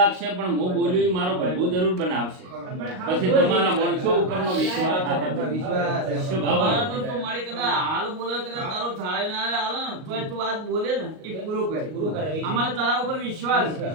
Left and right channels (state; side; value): late; left; 38 ms